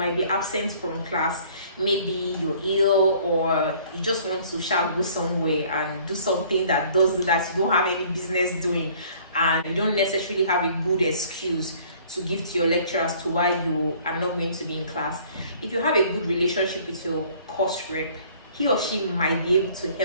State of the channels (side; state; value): both; inverted; correlation -0.55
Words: be absent from class. Maybe you're ill, or you just want to go somewhere and do something that you don't have any business doing, and you don't necessarily have a good excuse to give to your lecturer as to why you are not going to be in class. If you have a good relationship with your course rep, he or she might be able to